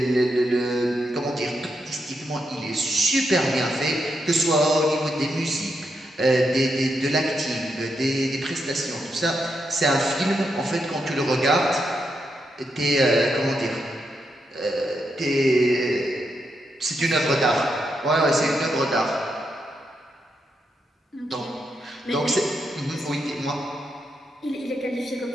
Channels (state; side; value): normal; both; correlation 0.82